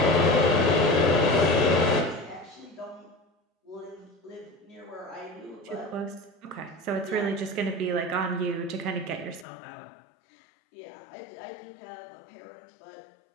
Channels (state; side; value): drops out; right; at 9.5 s